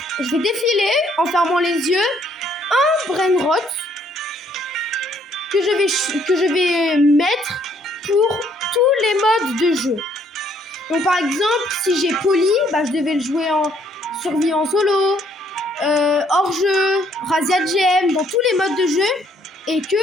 Je vais défiler en fermant les yeux un Brainrot que je vais mettre pour tous les modes de jeu. Donc par exemple, si j'ai Poli, je devais le jouer en survie en solo, hors jeu, Razia Gem, dans tous les modes de jeu, et que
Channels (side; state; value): both; normal; correlation 0.66